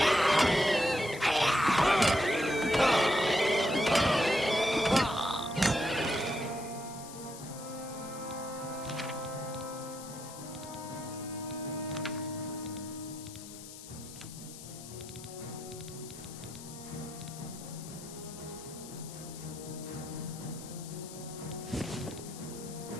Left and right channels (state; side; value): noise; left; hiss, 14 dB below the sound